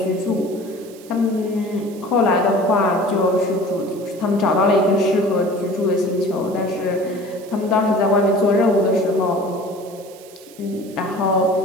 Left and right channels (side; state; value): right; noise; hiss, 22 dB below the sound